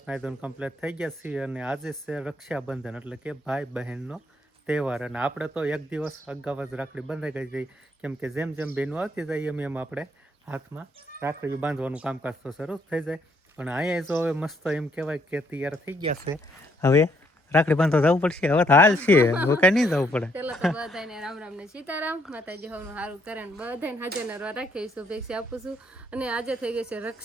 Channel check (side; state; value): both; normal; correlation 0.70